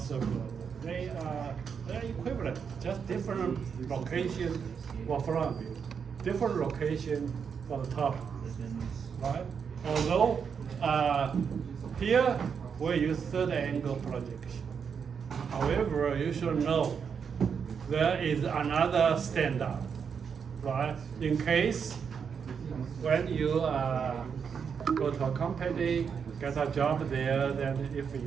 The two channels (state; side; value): quieter; left; 6.6 dB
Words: so good. They're equivalent, just different location for front view, different location for the top, right? Although here we use third angle projection. However, you should know there is another standard, right? In case when you go to a company, get a job there, then if